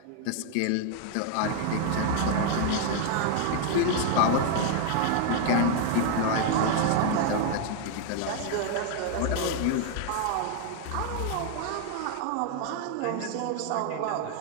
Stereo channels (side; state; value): both; different; correlation 0.00